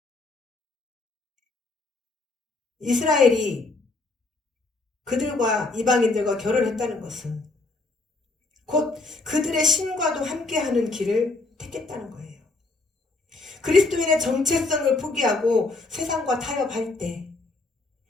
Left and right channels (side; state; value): right; quieter; 3.4 dB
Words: 이스라엘이 그들과 이방인들과 결혼했다는 것은 곧 그들의 신과도 함께하는 길을 택했다는 거예요. 그리스도인의 정체성을 포기하고 세상과 타협할 때